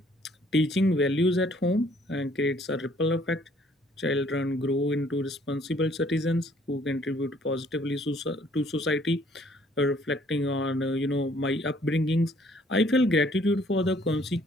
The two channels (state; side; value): normal; both; correlation 0.62